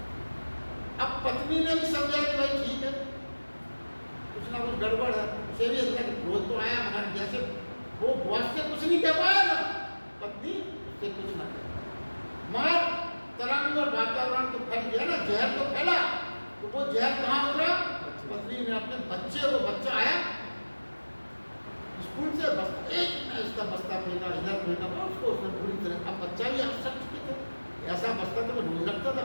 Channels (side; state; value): both; inverted; correlation -1.00